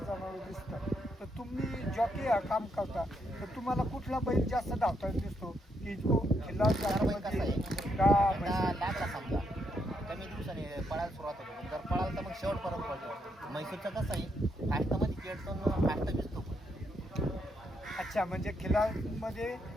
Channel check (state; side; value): normal; both; correlation 0.78